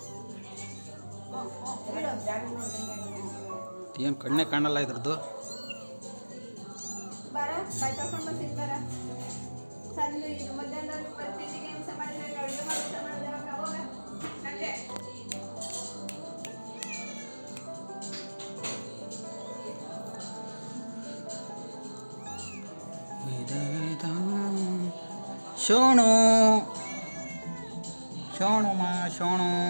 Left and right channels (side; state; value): both; inverted; correlation -1.00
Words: ಏನು ಕಣ್ಣೇ ಕಾಣಲ್ಲ ಇದ್ರದ್ದು. ಬರ ಬೈ ತಗೊಂಡು ಬರ್ತೀನಿ ಬರ. ಸಂಜೆ ಇದು ಮಧ್ಯಾಹ್ನದಲ್ಲಿ ಬರ್ತಿದ್ದಿಗೆ ಹಿಂಸೆ ಮಾಡಿದ್ರೆ ಅಡುಗೆ ಮಾಡಿದ್ರೆ ಅವಾಗ ಸಂಜೆ ಶೋಣು ಶೋಣು ಮಾ ಶೋಣು